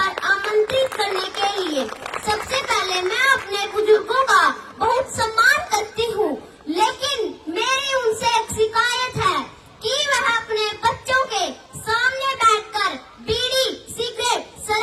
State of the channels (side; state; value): both; identical; correlation 1.00